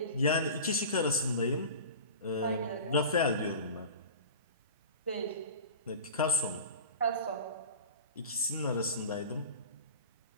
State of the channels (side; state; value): both; inverted; correlation -0.35